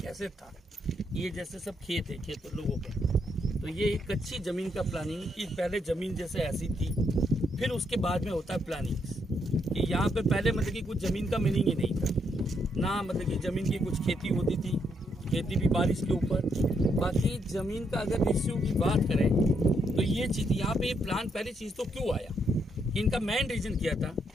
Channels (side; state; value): both; normal; correlation 0.76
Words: था। ये जैसे सब खेत है, खेत लोगों के, तो ये एक कच्ची ज़मीन का प्लानिंग कि पहले ज़मीन जैसे ऐसी थी, फिर उसके बाद में होता है प्लानिंग कि यहाँ पे पहले मतलब कि कुछ ज़मीन का मीनिंग ही नहीं था ना, मतलब कि ज़मीन की कुछ खेती होती थी, खेती भी बारिश के ऊपर। बाकी ज़मीन का अगर इश्यू की बात करें तो ये चीज़ यहाँ पे ये प्लान पहली चीज़ तो क्यों आया, इनका मेन रीज़न क्या था